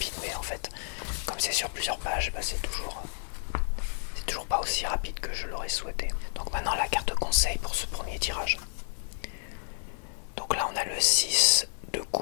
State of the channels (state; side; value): silent; right; 57 dB below the other